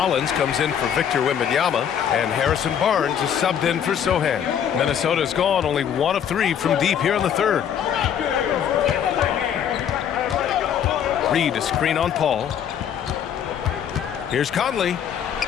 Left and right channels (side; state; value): right; quieter; 8.7 dB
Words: comes in for Victor Wembanyama, and Harrison Barnes is subbed in for Sohan. Minnesota's gone only 1 of 3 from deep here in the third. Reed a screen on Paul. Here's Conley.